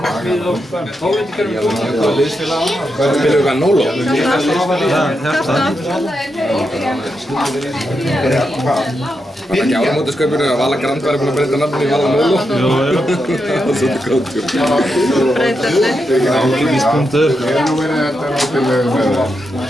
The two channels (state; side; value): normal; both; correlation 0.85